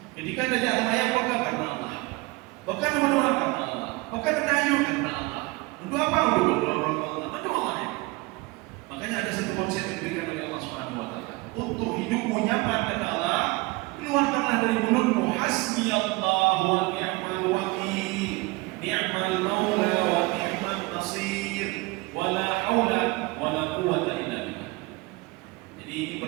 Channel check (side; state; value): left; quieter; 23.4 dB